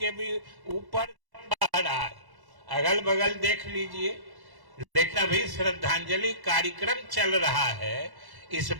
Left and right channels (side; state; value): left; late; 1.1 ms